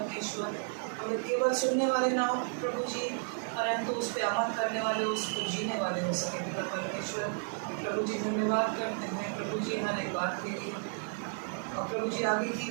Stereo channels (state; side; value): silent; left; 56 dB below the other